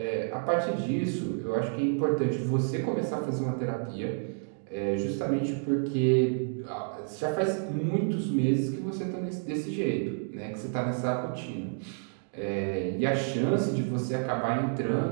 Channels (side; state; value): left; silent; 58 dB below the other